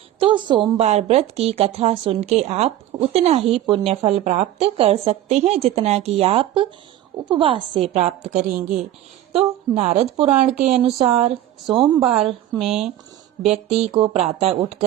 तो सोमवार व्रत की कथा सुन के आप उतना ही पुण्य फल प्राप्त कर सकते हैं जितना कि आप उपवास से प्राप्त करेंगे। तो नारद पुराण के अनुसार सोमवार में व्यक्ति को प्रातः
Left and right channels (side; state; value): left; quieter; 12.8 dB